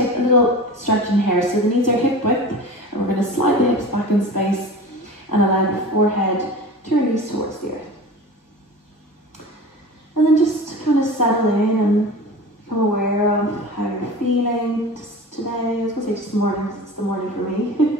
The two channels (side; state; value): both; normal; correlation 0.35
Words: a little stretch in here. So the knees are hip width, and we're going to slide the hips back in space and allow the forehead to release towards the earth. And then just kind of settle in and become aware of how you're feeling just today. I was going to say just morning, because it's the morning for me.